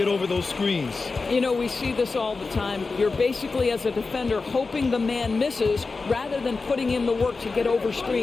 over those screens. You know, we see this all the time. You're basically, as a defender, hoping the man misses rather than putting in the work to get over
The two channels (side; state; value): right; quieter; 4.1 dB